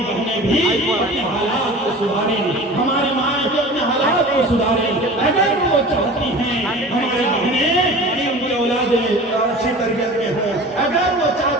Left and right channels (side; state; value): both; normal; correlation 0.38